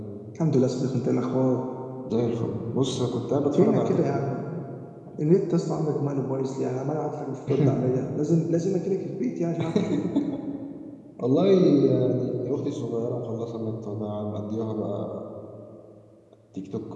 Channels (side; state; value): both; identical; correlation 1.00